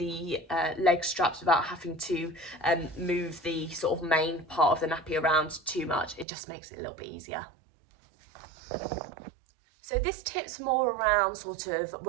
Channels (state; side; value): drops out; left; at 6.2 s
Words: leg straps without having to move the sort of main part of the nappy around too much. It just makes it a little bit easier. So this tip's more around sort of